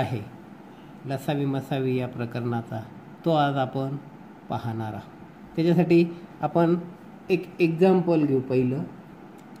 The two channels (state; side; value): identical; both; correlation 1.00